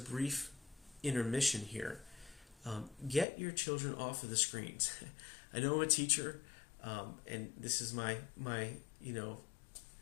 intermission here, get your children off of the screens. I know I'm a teacher, and this is my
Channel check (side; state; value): right; drops out; at 3.2 s